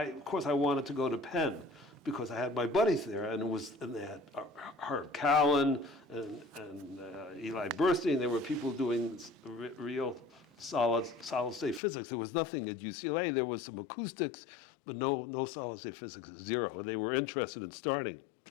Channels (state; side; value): drops out; right; at 11.8 s